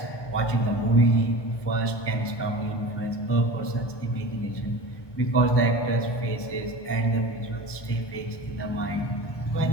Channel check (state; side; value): late; right; 1.2 ms